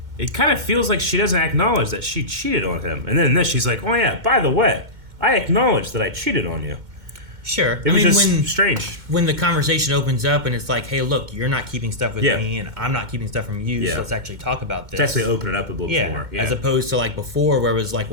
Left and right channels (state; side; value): late; left; 2.1 ms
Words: it kind of feels like she doesn't acknowledge that she cheated on him. And then in this, she's like, oh yeah, by the way, I acknowledge that I cheated on you. Sure. It was just strange. When the conversation opens up and it's like, hey, look, you're not keeping stuff with me and I'm not keeping stuff from you, so let's actually talk about this. Let's actually open it up a little more. Yeah. As opposed to like before where it was like,